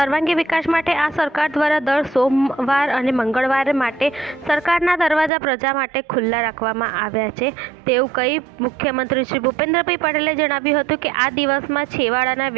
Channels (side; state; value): left; drops out; at 5.3 s